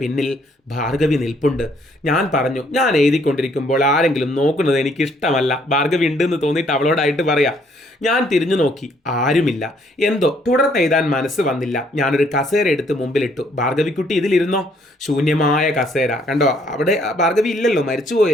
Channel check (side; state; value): both; normal; correlation 0.66